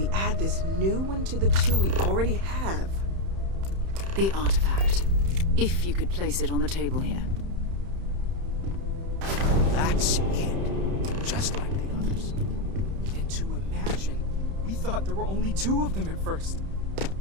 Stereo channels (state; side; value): late; left; 31 ms